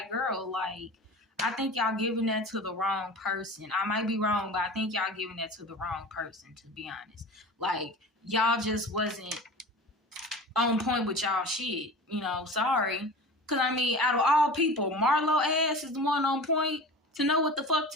girl, I think y'all giving that to the wrong person. I might be wrong, but I think y'all giving that to the wrong person, to be honest. Y'all just wasn't on point with y'all shit. Sorry. Because, out of all people, Marlo ass is the one on point to know what the fuck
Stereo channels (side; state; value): both; normal; correlation 0.36